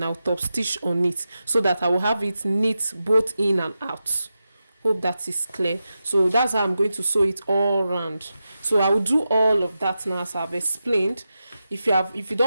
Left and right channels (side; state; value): both; inverted; correlation -0.90